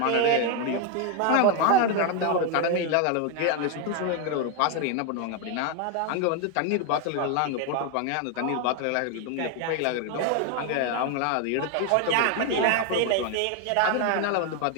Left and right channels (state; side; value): different; both; correlation 0.01